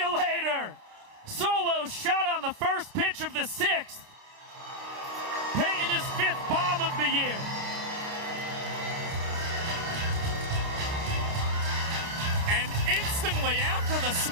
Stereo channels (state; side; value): late; left; 30 ms